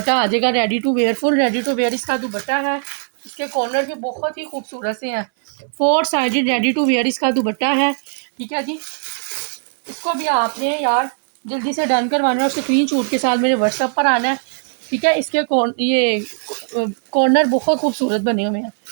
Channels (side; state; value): left; silent; 64 dB below the other